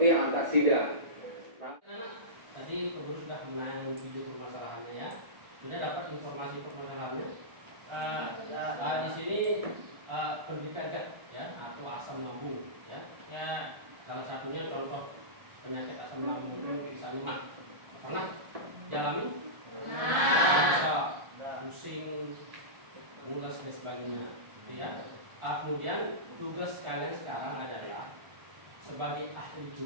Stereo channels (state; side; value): late; left; 1.3 ms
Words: yang antasida. Nah, tadi Guru sudah menayangkan video permasalahannya ya. Sudah dapat informasi permasalahannya. Di sini penderita GERD ya, atau asam lambung ya. Ya, salah satunya contoh penyakit asam lambung itu misalnya pernah dialami? Bisa pusing, mules dan sebagainya, gitu ya. Kemudian tugas kalian sekarang adalah sebagai ahli